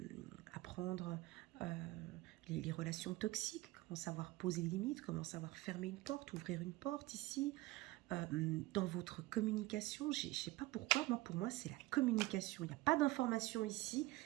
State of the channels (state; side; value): quieter; left; 18.9 dB